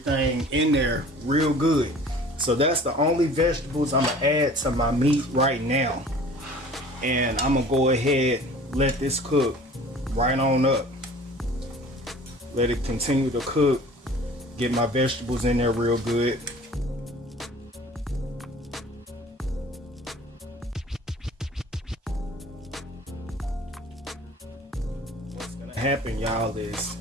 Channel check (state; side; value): normal; both; correlation 0.46